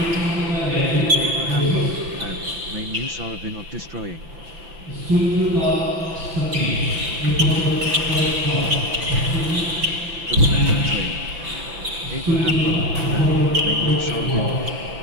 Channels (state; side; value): late; left; 6.0 ms